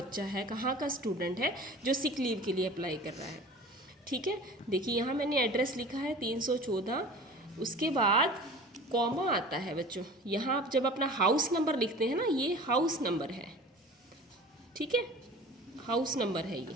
है, कहाँ का स्टूडेंट है जो सिक लीव के लिए अप्लाई कर रहा है, ठीक है। देखिए, यहाँ मैंने एड्रेस लिखा है 314, उसके बाद कॉमा आता है बच्चों। यहाँ आप जब अपना हाउस नंबर लिखते हैं ना, ये हाउस नंबर है, ठीक है, हाउस नंबर है ये।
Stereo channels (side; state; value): both; normal; correlation 0.40